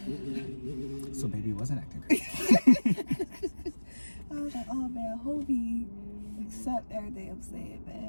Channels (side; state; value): both; inverted; correlation -1.00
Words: so baby wasn't acting crazy. I was like, oh man, I hope he accept everything I'm saying,